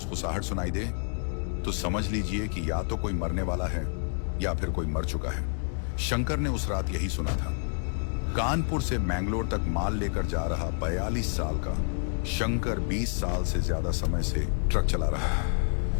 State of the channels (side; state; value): right; silent; digital silence